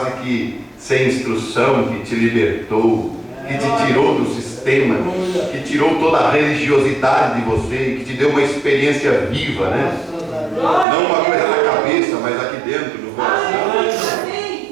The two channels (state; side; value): drops out; left; at 10.9 s